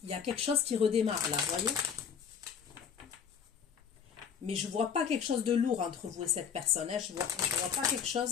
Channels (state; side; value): quieter; right; 7.4 dB